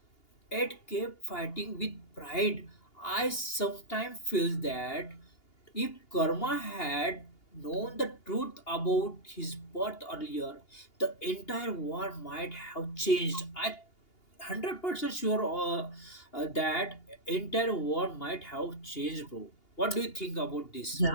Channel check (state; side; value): late; right; 2.8 ms